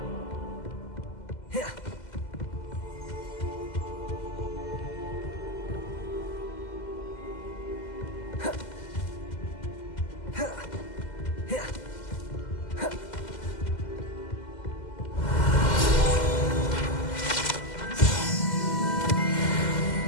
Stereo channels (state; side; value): late; right; 2.0 ms